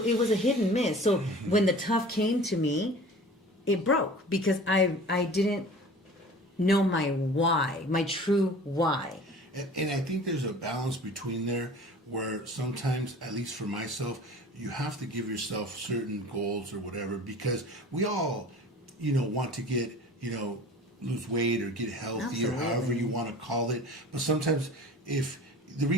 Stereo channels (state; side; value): normal; both; correlation 0.42